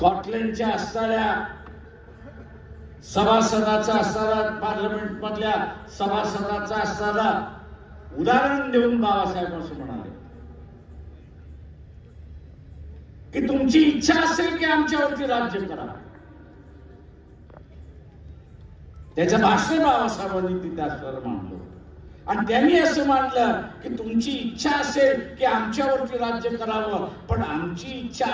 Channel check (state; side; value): identical; both; correlation 1.00